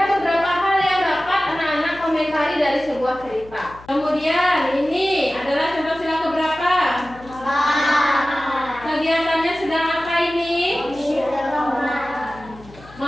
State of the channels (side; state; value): left; noise; hum, 21 dB below the sound